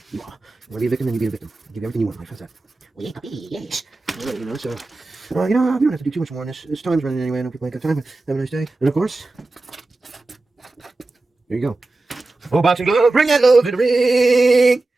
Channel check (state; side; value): quieter; left; 3.2 dB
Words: You are. You want to be a victim, then you be a victim. Give you everything you want in life. How's that? Well, yeah, puppy, yes. Right, so we don't have to do too much more on this. This time's running anyway. I know people ain't got time. Have a nice day. And of course, there you go. Oh, boxing glove, bring that love to the ring.